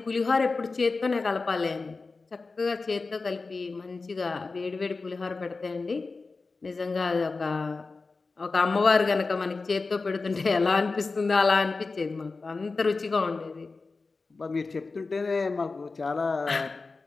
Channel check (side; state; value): right; quieter; 4.0 dB